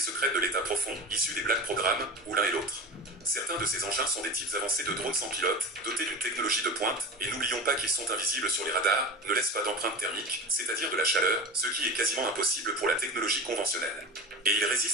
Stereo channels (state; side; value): normal; both; correlation 0.30